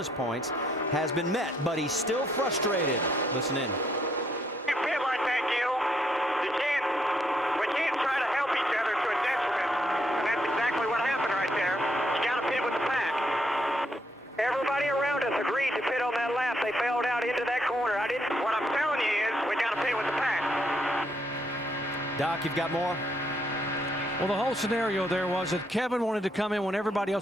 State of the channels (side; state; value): both; normal; correlation 0.73